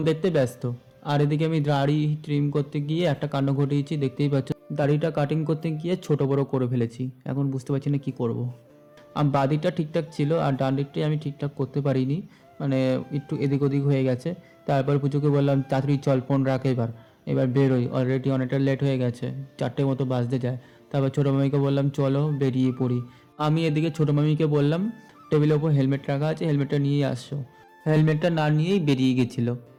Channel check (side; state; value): both; identical; correlation 1.00